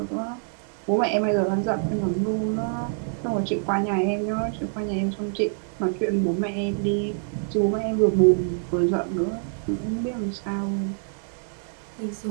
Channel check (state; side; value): silent; left; 60 dB below the other